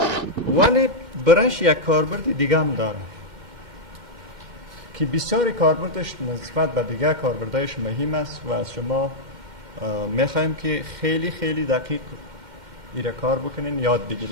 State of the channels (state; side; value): late; left; 2.1 ms